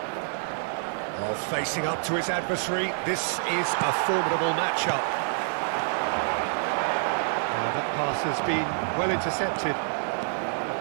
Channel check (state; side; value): silent; left; digital silence